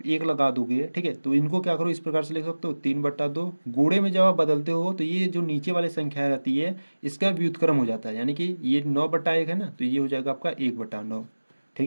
एक लगा दोगे, ठीक है, तो इनको क्या करो इस प्रकार से लिख सकते हो 3/2। गुणे में जब आप बदलते हो तो ये जो नीचे वाली संख्या रहती है इसका व्युत्क्रम हो जाता है, यानी कि ये 9/1 है ना, तो ये हो जाएगा आपका 1/9।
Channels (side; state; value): both; inverted; correlation -1.00